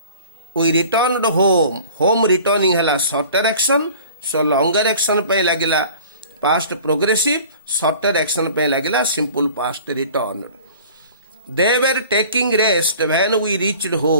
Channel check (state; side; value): inverted; both; correlation -0.45